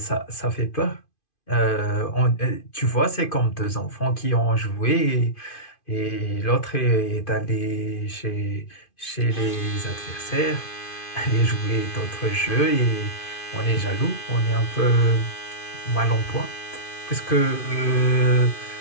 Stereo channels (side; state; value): right; late; 2.5 ms